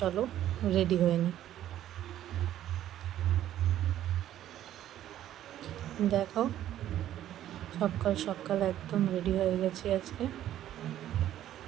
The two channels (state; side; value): quieter; left; 12.1 dB